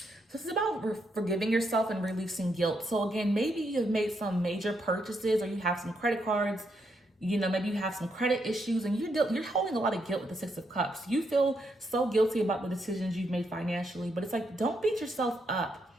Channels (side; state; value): both; normal; correlation 0.78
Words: So this is about forgiving yourself and releasing guilt. So again, maybe you've made some major purchases, or you have some credit cards, maybe you have some credit issues, and you're holding a lot of guilt with the Six of Cups. You feel so guilty about the decisions you've made financially, but it's like, don't beat yourself up